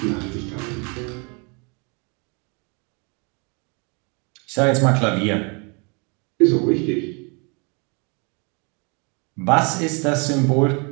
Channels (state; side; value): quieter; left; 32.7 dB